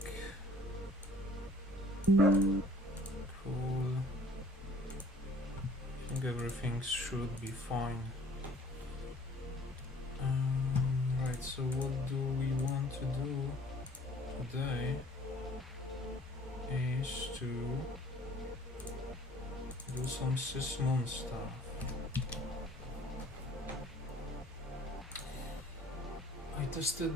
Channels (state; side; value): normal; both; correlation 0.53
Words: Cool. I think everything should be fine. Right, so what do we want to do today is to do some Sysmon stuff. I tested